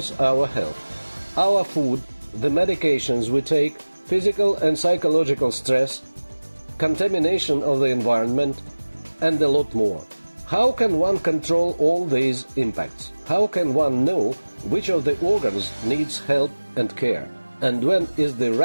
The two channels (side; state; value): both; inverted; correlation -1.00